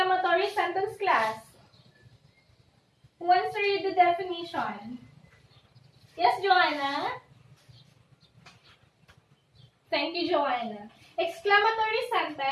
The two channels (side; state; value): both; identical; correlation 1.00